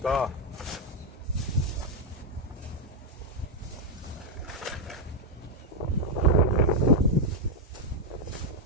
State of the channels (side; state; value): both; normal; correlation 0.00